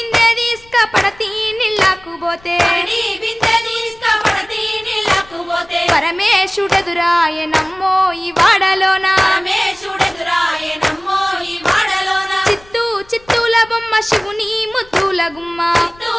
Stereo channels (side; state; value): left; noise; rumble, 26 dB below the sound